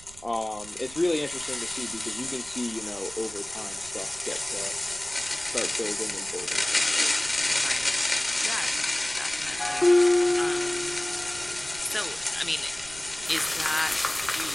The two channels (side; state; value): right; noise; rumble, 20 dB below the sound